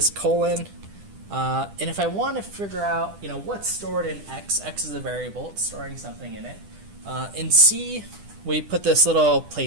colon. And if I want to figure out, you know, what's stored in x is a variable. It's storing something in it. In C, we put this little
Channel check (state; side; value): late; left; 10 ms